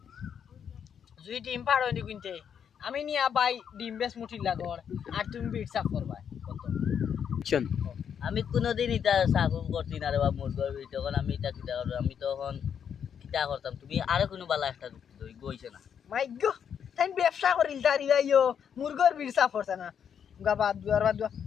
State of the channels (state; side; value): quieter; right; 8.0 dB